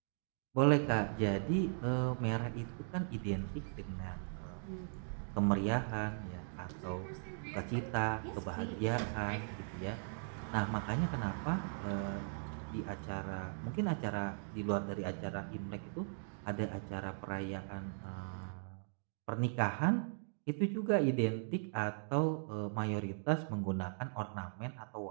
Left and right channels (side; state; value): left; silent; digital silence